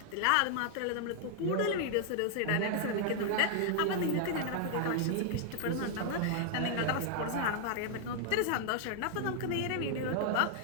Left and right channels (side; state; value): both; different; correlation 0.00